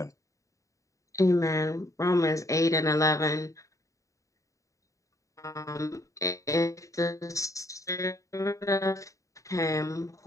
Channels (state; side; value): late; right; 0.16 ms